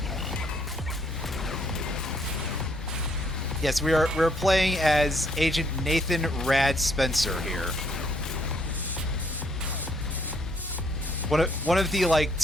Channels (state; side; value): normal; both; correlation 0.69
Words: Yes, we're playing as Agent Nathan Rad Spencer here. One of the, like,